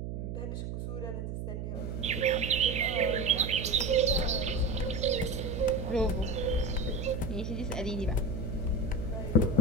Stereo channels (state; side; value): noise; right; hum, 5 dB below the sound